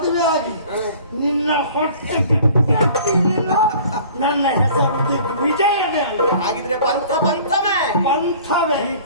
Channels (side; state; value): both; inverted; correlation -0.48